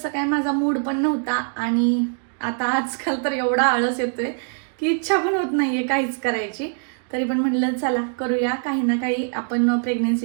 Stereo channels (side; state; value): left; silent; 55 dB below the other